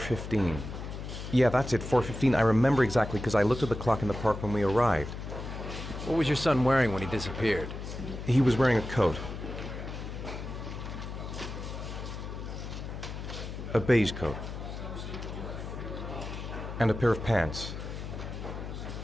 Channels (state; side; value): noise; left; hum, 8 dB below the sound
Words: Yeah, that's it, 4:15. I remember exactly because I looked at the clock in the park when we arrived. What was your son wearing when he disappeared? He was wearing a coat. A beige coat. And a pair of pants.